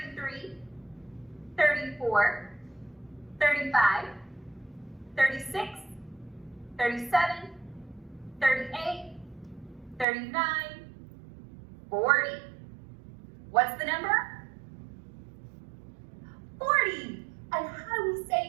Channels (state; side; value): drops out; left; at 10.1 s